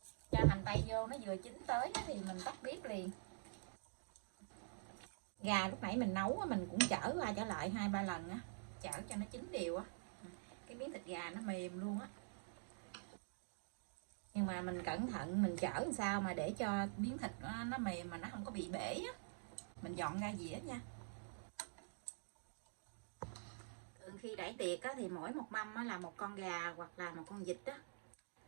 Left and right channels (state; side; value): silent; left; digital silence